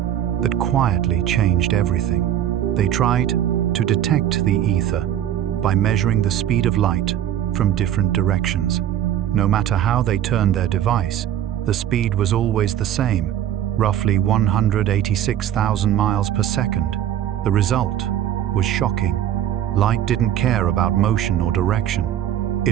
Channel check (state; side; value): quieter; left; 11.0 dB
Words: that quietly changed everything. They tried to detect the ether by measuring the speed of light from different directions. No matter how they turned their device, the speed was always the same, roughly 186,000 miles per second. The result was shocking. Light didn't care about motion or direction.